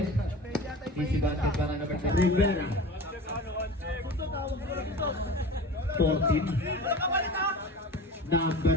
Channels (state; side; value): normal; both; correlation 0.35